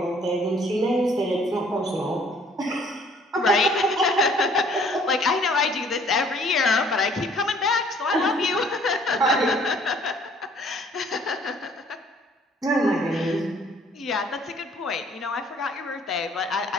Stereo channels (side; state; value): both; normal; correlation 0.58